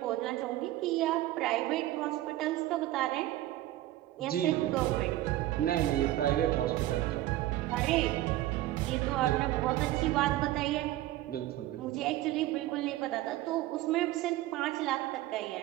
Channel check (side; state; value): left; quieter; 15.4 dB